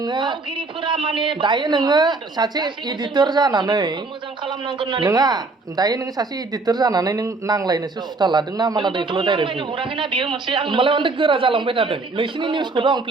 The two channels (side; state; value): left; quieter; 3.6 dB